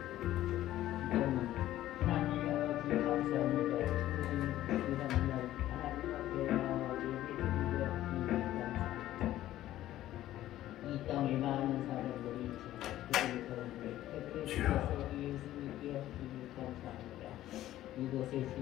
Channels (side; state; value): right; quieter; 13.9 dB